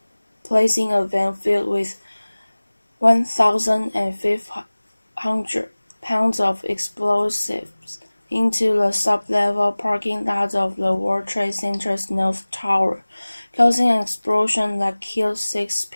placing a van filled with 1,500 pounds of explosives into the sub-level parking lot of the World Trade Center's North Tower, causing an explosion that killed 6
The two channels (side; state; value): both; inverted; correlation -1.00